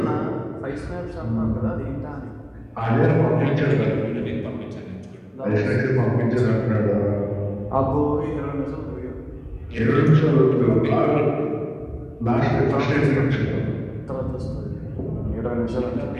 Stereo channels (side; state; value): both; identical; correlation 1.00